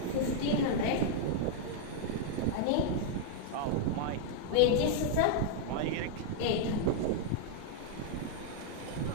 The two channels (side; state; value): both; different; correlation -0.01